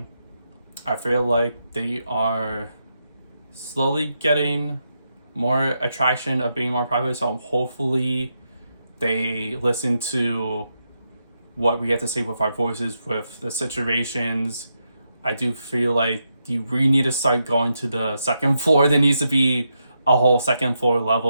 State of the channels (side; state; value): both; inverted; correlation -0.83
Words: I feel like they are slowly getting more attraction of being more private, so hopefully they listen to what we have to say with our voices, with the situations. I do feel like you really need to start going to the second floor. There needs to be a whole second floor